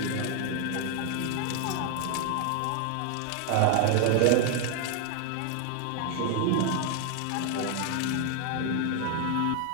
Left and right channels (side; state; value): both; different; correlation 0.01